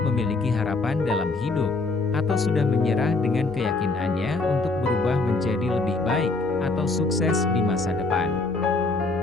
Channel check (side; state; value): right; quieter; 3.4 dB